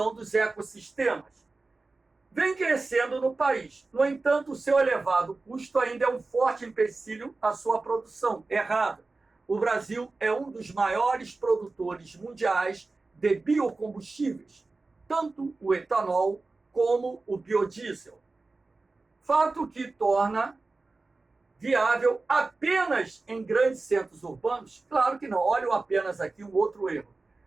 dos ecossistemas. Vem crescendo no país. No entanto, o seu elevado custo ainda é um forte empecilho à sua produção. Errado. O Brasil é um dos maiores produtores mundiais de biocombustíveis, tanto o etanol como o biodiesel. Fato que torna viável apenas em grandes centros urbanos? Claro que não. Olha apenas aqui um outro erro.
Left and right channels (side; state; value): left; quieter; 3.6 dB